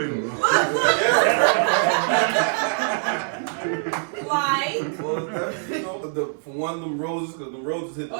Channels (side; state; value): left; silent; 59 dB below the other